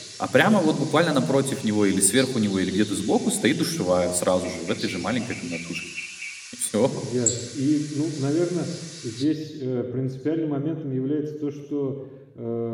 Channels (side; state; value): both; identical; correlation 1.00